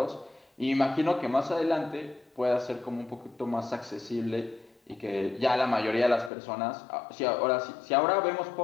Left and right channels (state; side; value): drops out; right; at 6.3 s